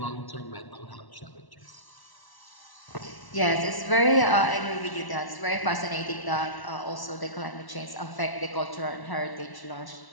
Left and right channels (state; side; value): late; right; 1.0 ms